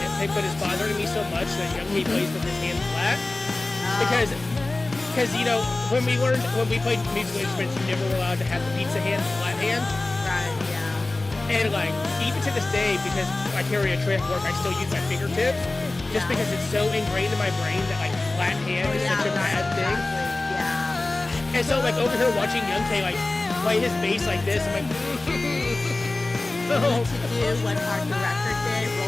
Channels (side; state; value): right; quieter; 3.0 dB